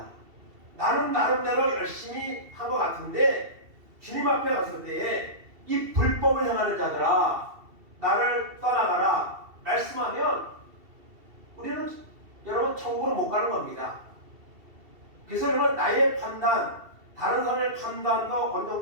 나는 나름대로 열심히 한 것 같은데 주님 앞에 갔을 때에 이 불법을 행하는 자들아 나를 떠나가라 말씀하면 우리는 여러분 천국으로 못 가는 겁니다. 그래서 여러분, 나의 판단, 다른 사람의 판단도 어느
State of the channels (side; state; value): left; late; 2.7 ms